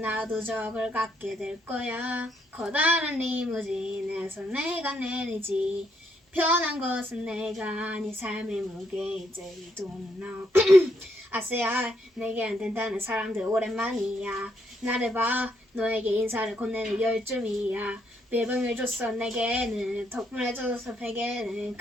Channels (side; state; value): both; normal; correlation 0.75